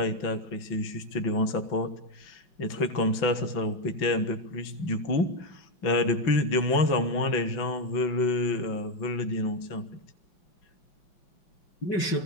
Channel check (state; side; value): late; right; 5.9 ms